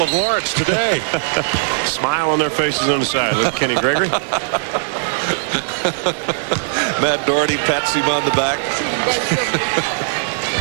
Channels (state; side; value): silent; left; digital silence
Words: of Lawrence today. Smile on their faces on the side. Look at Kenny Gregory. Matt Doherty pats him on the back.